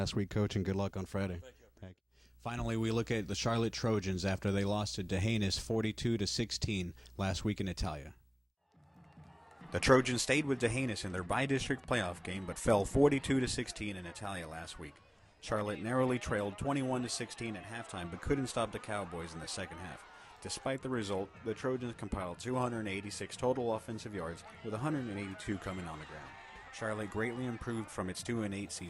week, Coach, and good luck on Friday. Thank you. Finally, we look at the Charlotte Trojans after they lost to Dehanis 42-16 last week in Italia. The Trojans stayed with Dehanis in their bi-district playoff game, but fell 42-16 in Italia last week. Charlotte narrowly trailed 21-16 at halftime, but couldn't stop the Cowboys in the second half. Despite the result, the Trojans compiled 286 total offensive yards, with 182 coming on the ground. Charlotte greatly improved from its 2-8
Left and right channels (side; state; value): both; identical; correlation 1.00